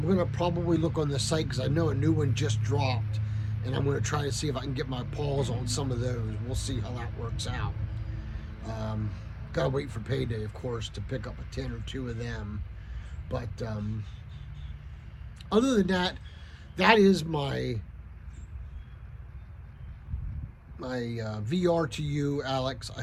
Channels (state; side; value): identical; both; correlation 1.00